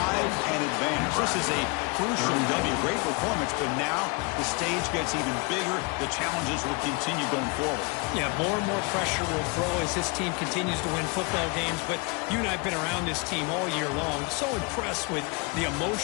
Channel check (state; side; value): quieter; right; 28.9 dB